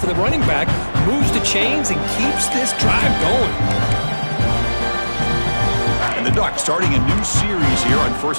the running back, moves the chains, and keeps this drive going. And the Ducks starting a new series here on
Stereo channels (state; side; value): inverted; both; correlation -1.00